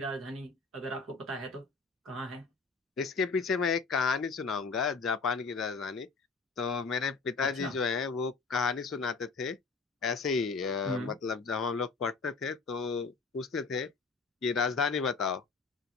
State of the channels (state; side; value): quieter; right; 4.6 dB